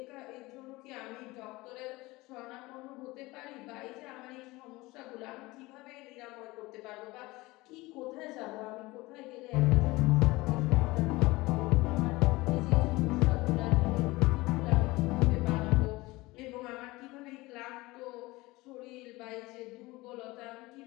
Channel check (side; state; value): right; quieter; 21.1 dB